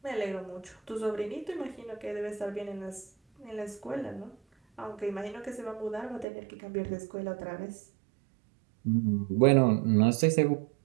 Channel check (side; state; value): left; drops out; at 6.2 s